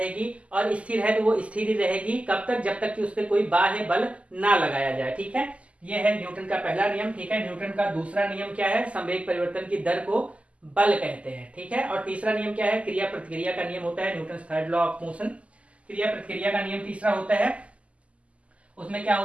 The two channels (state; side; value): late; left; 0.063 ms